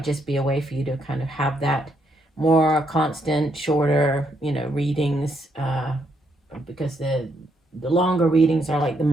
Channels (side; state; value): both; normal; correlation 0.76